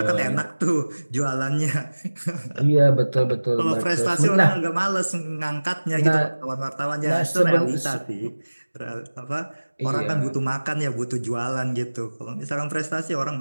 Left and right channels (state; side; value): inverted; both; correlation -1.00